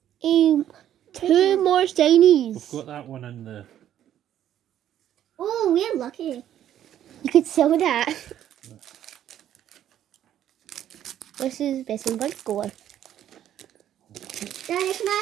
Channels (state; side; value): quieter; left; 11.0 dB